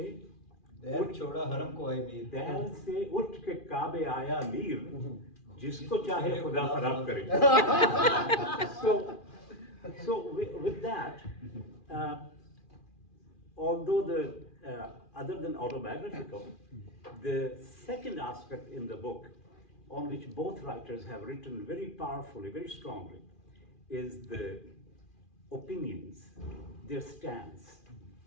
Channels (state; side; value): late; right; 2.4 ms